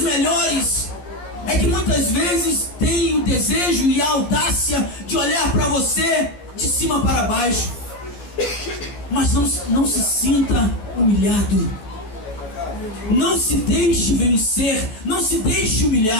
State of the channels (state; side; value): late; right; 14 ms